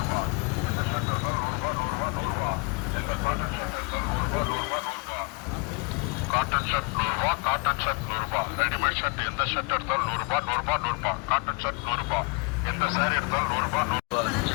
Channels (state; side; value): quieter; right; 30.5 dB